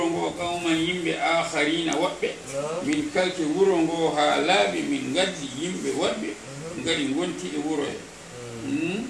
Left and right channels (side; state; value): both; identical; correlation 1.00